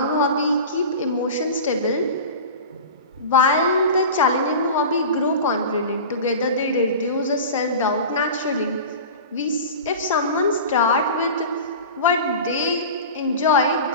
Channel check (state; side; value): inverted; both; correlation -0.33